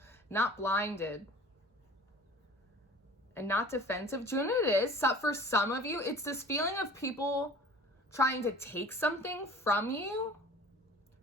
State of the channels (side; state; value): both; normal; correlation 0.44